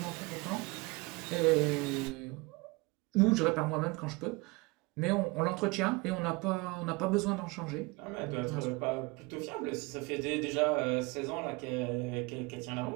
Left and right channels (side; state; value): left; quieter; 25.1 dB